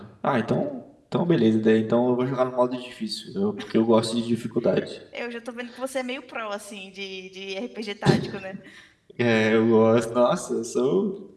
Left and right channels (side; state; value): both; identical; correlation 1.00